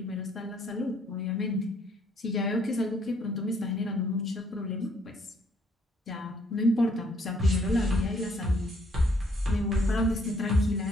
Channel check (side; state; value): both; normal; correlation 0.67